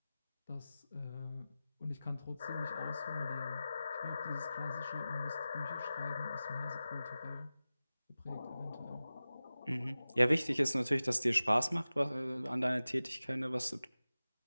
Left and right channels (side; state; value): both; inverted; correlation -0.96